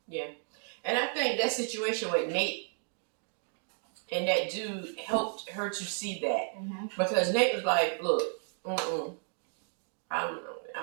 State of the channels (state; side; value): silent; left; 56 dB below the other